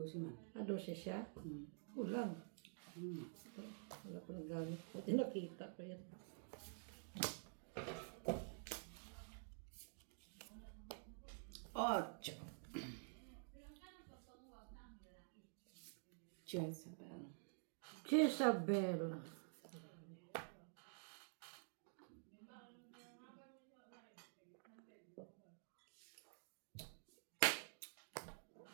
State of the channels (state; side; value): silent; left; digital silence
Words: man. Ah, 12 siya? Kulang. Wala ko nang gamit. Buti nakita ko yan. Ocho. Jezebel. Jezabel.